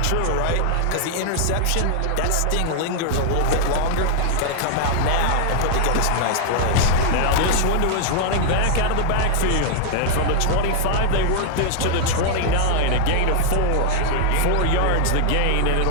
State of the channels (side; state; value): both; different; correlation -0.01